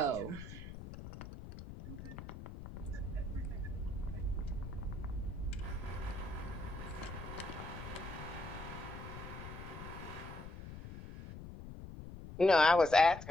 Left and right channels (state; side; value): noise; left; rumble, 11 dB below the sound